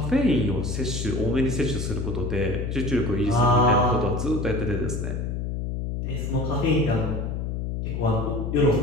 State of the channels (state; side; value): noise; left; hum, 3 dB below the sound